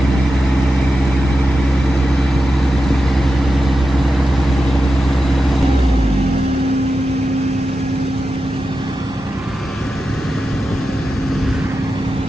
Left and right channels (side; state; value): both; normal; correlation 0.90